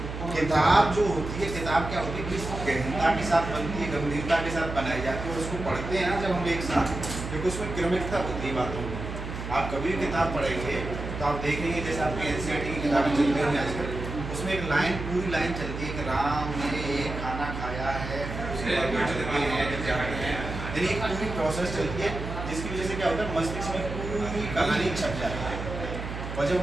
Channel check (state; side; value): noise; right; hum, 7 dB below the sound